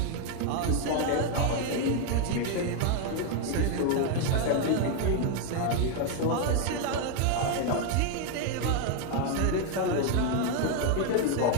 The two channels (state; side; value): different; both; correlation 0.01